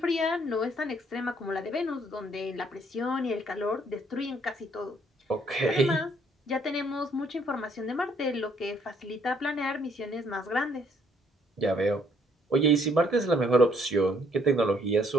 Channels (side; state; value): both; normal; correlation 0.66